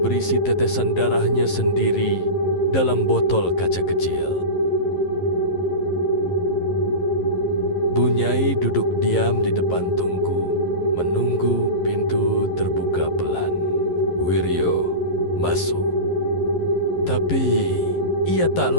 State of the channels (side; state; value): right; late; 11 ms